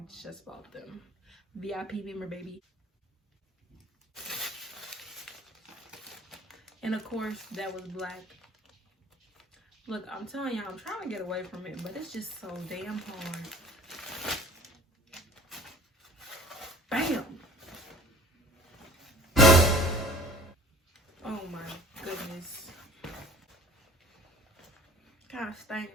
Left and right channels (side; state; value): both; normal; correlation 0.46